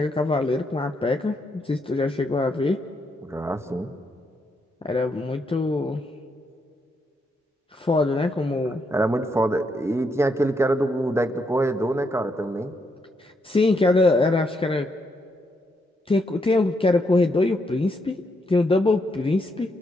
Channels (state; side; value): normal; both; correlation 0.78